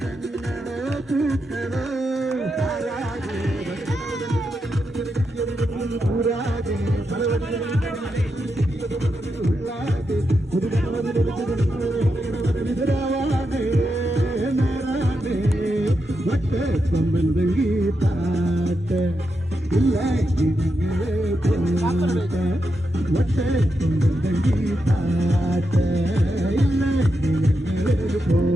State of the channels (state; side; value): normal; both; correlation 0.86